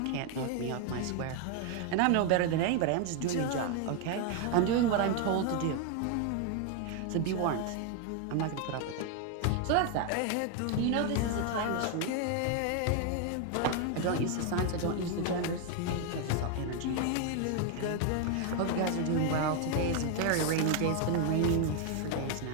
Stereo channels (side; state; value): both; different; correlation 0.01